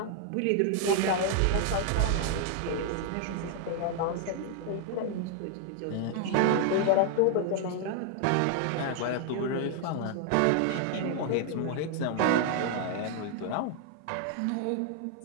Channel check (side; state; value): both; different; correlation 0.00